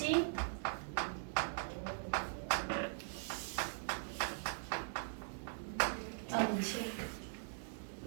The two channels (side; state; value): left; silent; digital silence